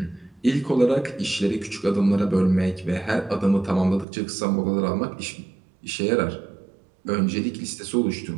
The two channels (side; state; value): left; drops out; at 4.0 s